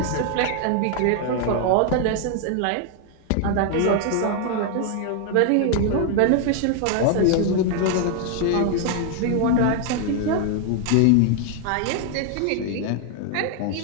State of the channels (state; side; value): different; both; correlation 0.00